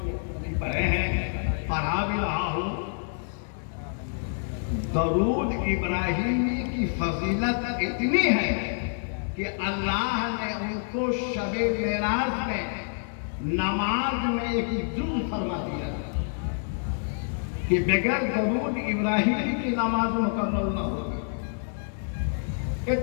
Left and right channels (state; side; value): silent; right; 60 dB below the other